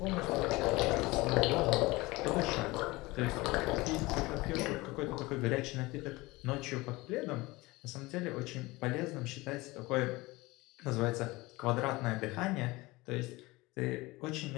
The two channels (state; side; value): quieter; right; 21.7 dB